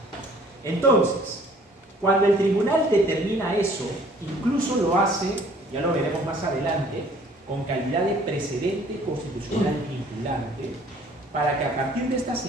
Entonces, cuando el tribunal determina eso, incluso lo hace ya lo veremos más adelante, con calidad de precedente constitucional vinculante, para que a partir de esta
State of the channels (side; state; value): both; normal; correlation 0.55